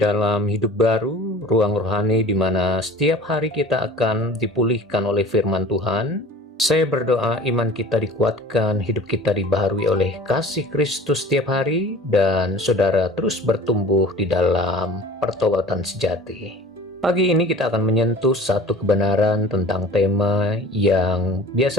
Hidup Baru, ruang rohani di mana setiap hari kita akan dipulihkan oleh firman Tuhan. Saya berdoa iman kita dikuatkan, hidup kita dibaharui oleh kasih Kristus setiap hari, dan saudara terus bertumbuh di dalam pertobatan sejati. Pagi ini kita akan menyentuh satu kebenaran tentang tema yang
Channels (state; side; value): normal; both; correlation 0.42